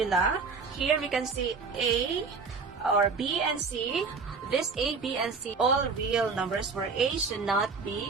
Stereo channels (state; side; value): quieter; left; 4.8 dB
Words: here we can see a or b and c. This a, b, and c, all real numbers where a should not